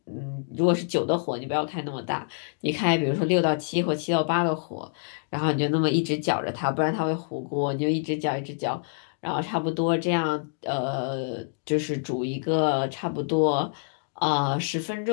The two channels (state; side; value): silent; right; digital silence